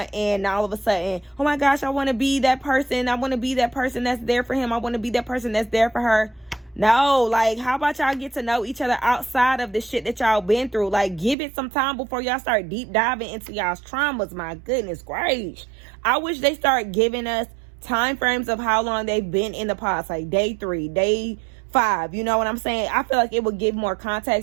and all of a sudden, oh my gosh, I want to be that person. I want to be that person that's there for him. I want to be that person that's there for her. No, like, how about y'all get to know each other outside of the shit that y'all been through? Like, give it some time before y'all start deep diving into y'all's traumas. My goodness gracious. I wish they start giving us time frames of how long they've been in the past, like day 3, day 5. You know what I'm saying? I feel like it would give more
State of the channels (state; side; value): drops out; left; at 11.4 s